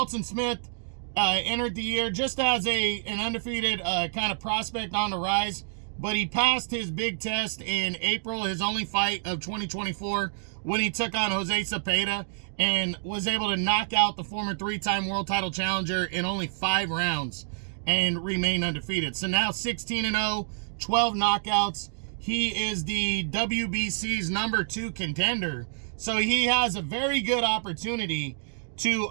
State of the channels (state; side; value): silent; left; digital silence